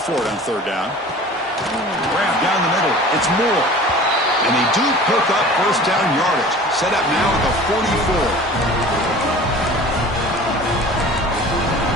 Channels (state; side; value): normal; both; correlation 0.42